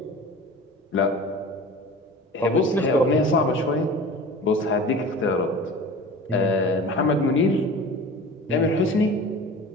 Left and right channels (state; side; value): normal; both; correlation 0.38